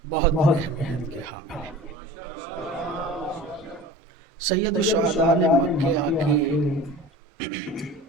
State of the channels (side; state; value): both; normal; correlation 0.39